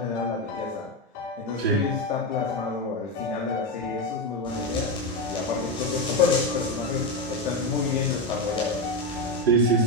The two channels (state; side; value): normal; both; correlation 0.12